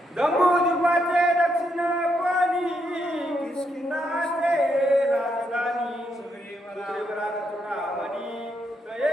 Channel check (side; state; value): both; normal; correlation 0.78